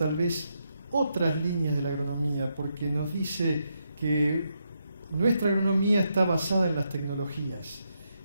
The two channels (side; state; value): both; inverted; correlation -0.81